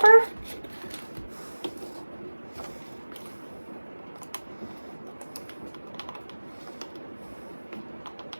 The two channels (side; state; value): both; inverted; correlation -1.00